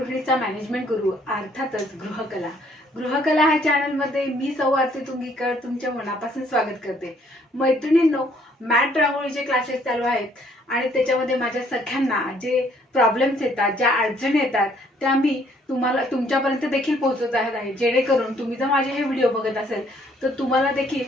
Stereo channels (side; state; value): both; normal; correlation 0.64